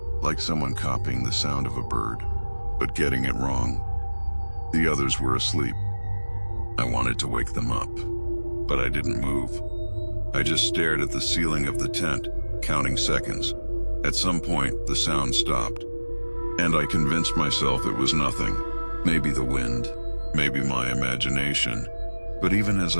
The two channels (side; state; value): both; inverted; correlation -1.00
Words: like someone copying the sound of a bird, but getting it wrong. The others were asleep. I wanted to wake them up, but I didn't move. I just stared at the ceiling of the tent, counting seconds. At some point, the sound stopped, and I convinced myself it was nothing. Maybe the wind, maybe my imagination. But even as